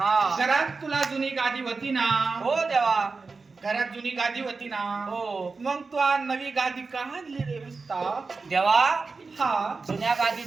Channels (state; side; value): quieter; left; 4.2 dB